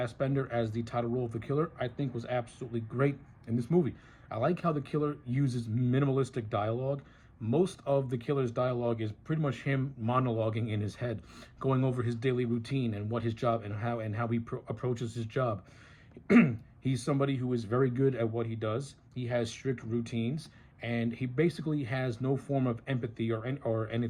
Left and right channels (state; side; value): identical; both; correlation 1.00